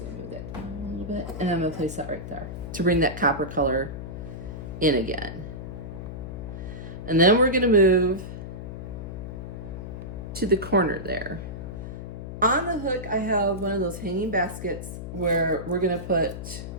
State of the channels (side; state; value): left; noise; hum, 8 dB below the sound